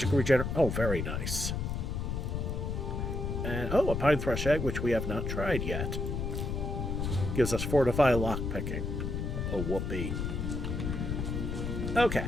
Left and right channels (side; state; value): left; noise; rumble, 2 dB below the sound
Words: regenerate. Oh, very nice. And, oh, a pine thrush egg, which we have not tried yet. Gives us fortify lockpicking. Oh, whoopee. Okay.